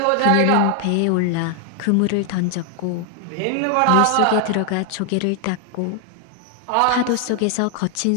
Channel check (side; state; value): both; different; correlation 0.00